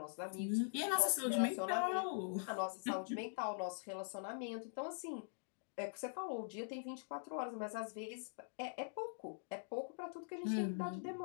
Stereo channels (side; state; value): right; silent; digital silence